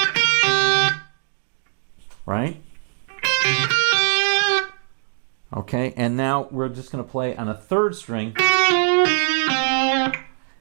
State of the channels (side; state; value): left; silent; digital silence